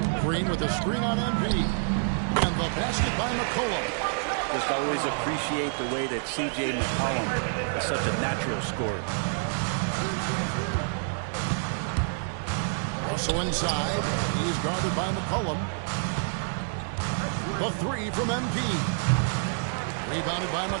Green with a screen on MP. And the basket by McCollum. Just always appreciate the way that C.J. McCollum is such a natural scorer. Russell inside. He's guarded by McCollum. The 3 from MP. Rebounded by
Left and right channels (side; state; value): left; silent; digital silence